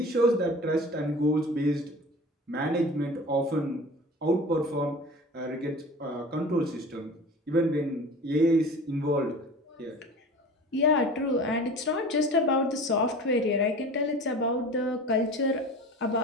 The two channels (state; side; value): normal; both; correlation 0.38